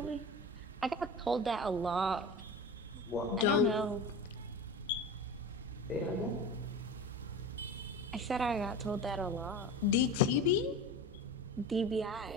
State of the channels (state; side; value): normal; both; correlation 0.31